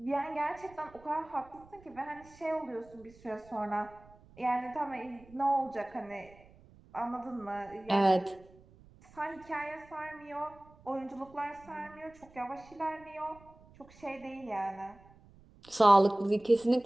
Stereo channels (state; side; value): noise; right; rumble, 25 dB below the sound